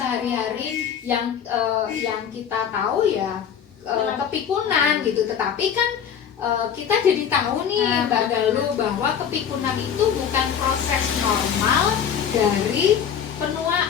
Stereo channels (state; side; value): quieter; right; 8.2 dB